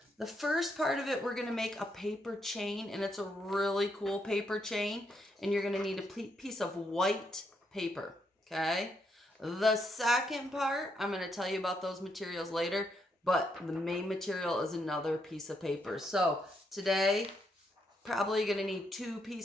The first part of it, we're going to make a paper chain, and it's a really cool paper chain, and you're going to need a piece of white paper, okay? The second part, I'm going to tell you about those materials later, but the main material is another piece of paper. So today, probably going to need 2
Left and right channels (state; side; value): normal; both; correlation 0.77